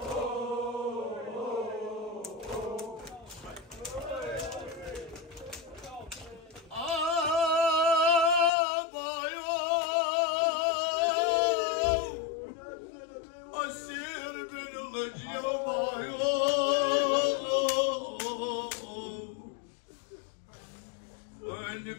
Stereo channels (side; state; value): right; drops out; at 8.5 s